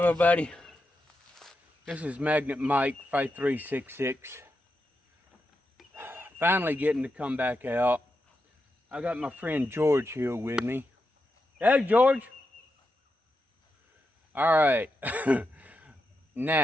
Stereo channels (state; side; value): normal; both; correlation 0.87